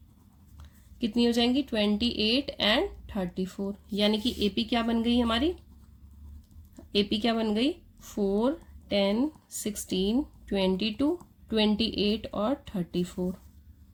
कितनी हो जाएंगी, 28 एंड 34, यानी कि एपी क्या बन गई हमारी, एपी क्या बन गई, 4, 10, 16, 22, 28 और 34।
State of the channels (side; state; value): both; identical; correlation 1.00